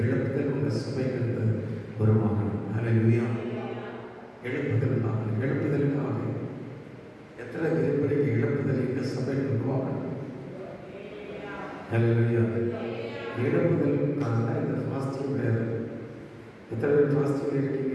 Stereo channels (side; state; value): both; identical; correlation 1.00